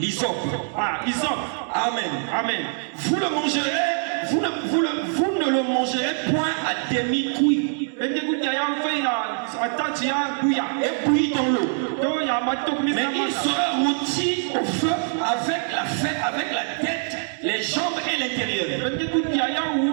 Amen. Amen. Vous le mangerez, vous ne le mangerez point à demi-cuit. Et bouilli dans l'eau. Mais il sera rôti au feu avec la tête, les jambes et l'intérieur.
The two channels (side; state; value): left; silent; 59 dB below the other